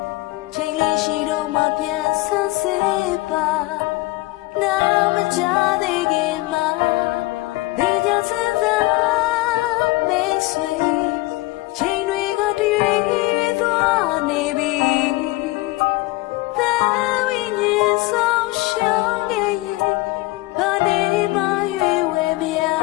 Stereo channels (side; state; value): right; quieter; 20.4 dB